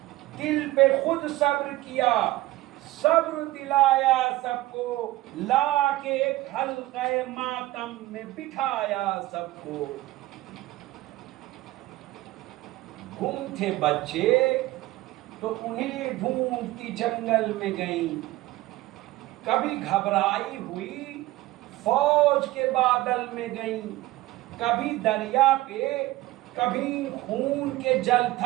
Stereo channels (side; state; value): left; quieter; 17.6 dB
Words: دل پہ خود صبر کیا، صبر دلایا سب کو، لا کے ایک حلقہ ماتم میں بٹھایا سب کو۔ گم تھے بچے تو انہیں ڈھونڈتی جنگل میں گئیں، کبھی گھبرائی ہوئی فوج کے بادل میں گئیں، کبھی دریا پہ کبھی خون کے جل